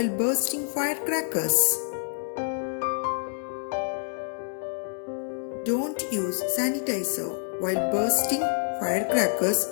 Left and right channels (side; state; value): right; silent; digital silence